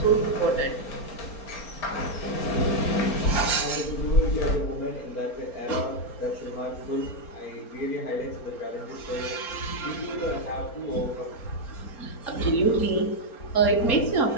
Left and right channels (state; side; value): late; right; 4.4 ms